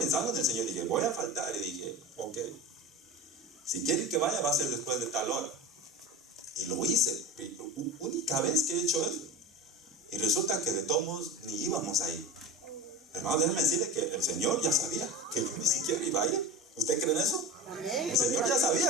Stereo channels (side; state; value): both; normal; correlation 0.30